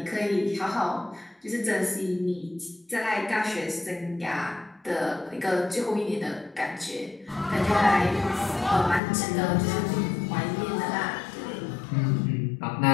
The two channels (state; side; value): drops out; right; at 9.0 s